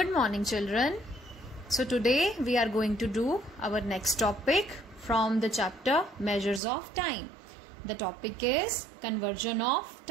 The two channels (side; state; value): left; drops out; at 6.6 s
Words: morning, children. So today we are going to do our next topic from the chapter Measures of Time. The topic is conversion of